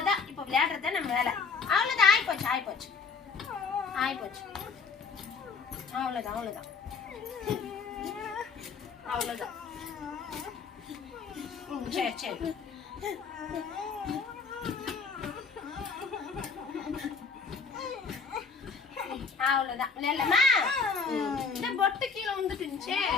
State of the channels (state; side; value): quieter; right; 5.0 dB